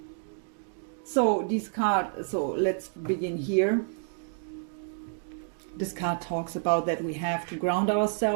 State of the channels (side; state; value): left; silent; 58 dB below the other